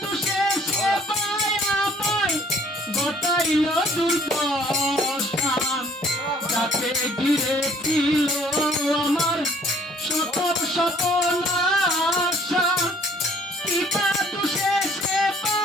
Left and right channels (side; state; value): both; normal; correlation 0.59